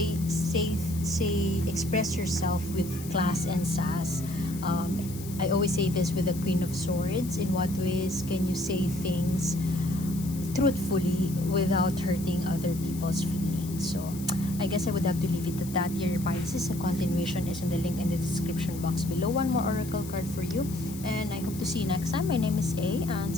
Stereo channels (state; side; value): noise; left; hiss, 15 dB below the sound